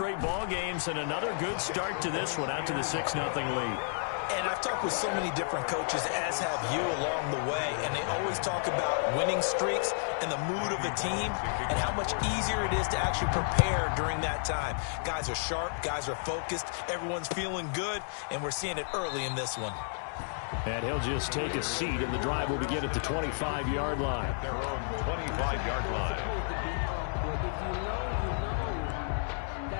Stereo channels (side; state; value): right; silent; digital silence